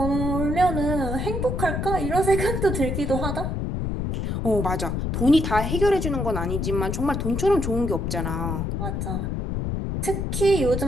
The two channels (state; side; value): noise; left; rumble, 1 dB below the sound